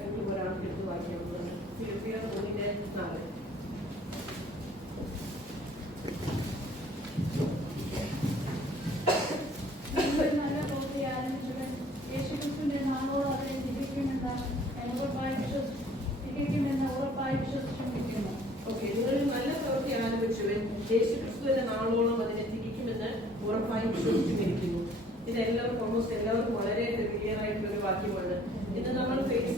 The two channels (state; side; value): normal; both; correlation 0.56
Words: ഒരാൾക്ക് എടുത്ത് വായിക്കാവുന്നതാണ്. ഫിലിപ്പിയർ 1:4. നല്ല പ്രവൃത്തി ആരംഭിച്ചവൻ യേശുക്രിസ്തുവിന്റെ നാമോട് അവരെ തികയ്ക്കുമെന്ന് ഉറപ്പായി വിശ്വസിച്ചിരിക്കുന്നു. ഓക്കെ, നിങ്ങളിൽ നല്ല പ്രവൃത്തി ആരംഭിച്ചവൻ യേശുക്രിസ്തുവിന്റെ നാളോളം അതിനെ തികയ്ക്കുമെന്ന് ഉറപ്പായി വിശ്വസിച്ചിരിക്കുന്നു. ഇതെല്ലാവർക്കും ഓൾമോസ്റ്റ് എല്ലാവർക്കും വളരെ ക്ലിയർ ആയിട്ടുള്ള ഒരു വാക്യമാണ്. ഇന്ന് നമ്മൾ ഫേസ്